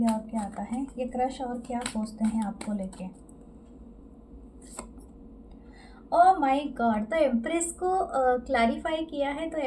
और क्या आता है। ये क्रश और क्या सोचते हैं आपको लेके। ओह माय गॉड, तो एम्प्रेस को क्लैरिफाई किया है, तो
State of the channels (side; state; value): both; identical; correlation 1.00